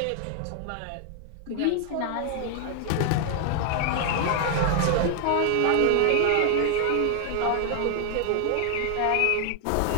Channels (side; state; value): both; different; correlation 0.00